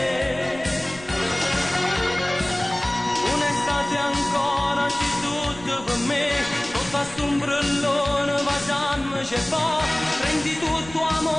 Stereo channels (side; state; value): right; noise; rumble, 18 dB below the sound